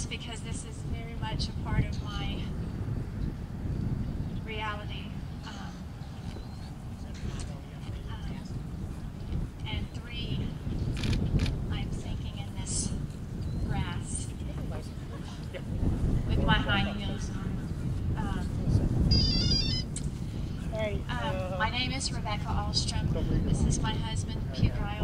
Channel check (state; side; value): identical; both; correlation 1.00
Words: because this is very much a part of my reality. And 3, I'm sinking in this grass with my high heels on. My name is Rebecca Ahlstrom. This is my husband, cute guy